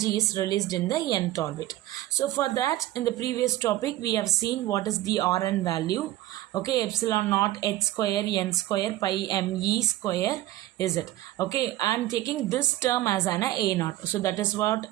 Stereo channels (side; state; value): left; quieter; 15.5 dB